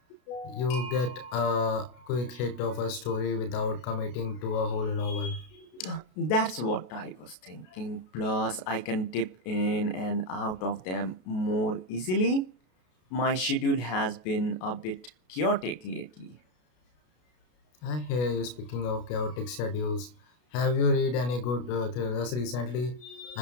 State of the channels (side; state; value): right; late; 33 ms